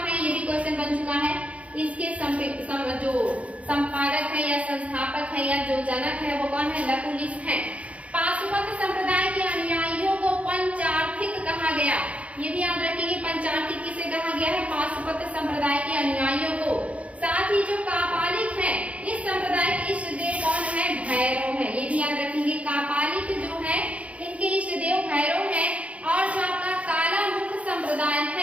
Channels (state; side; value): late; left; 0.065 ms